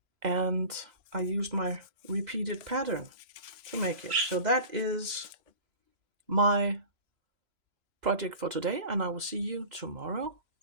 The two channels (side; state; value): left; late; 3.0 ms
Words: And I used my repeated pattern to make it. So that is my project for today, and I will see you tomorrow